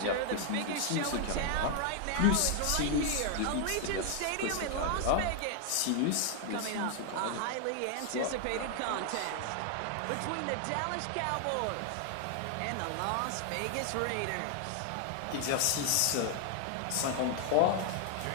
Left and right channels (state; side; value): different; both; correlation 0.00